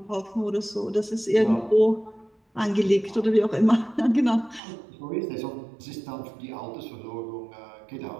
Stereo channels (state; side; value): drops out; left; at 4.6 s